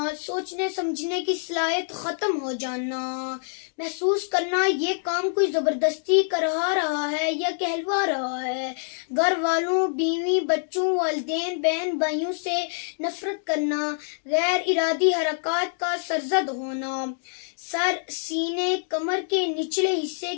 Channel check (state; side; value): silent; right; digital silence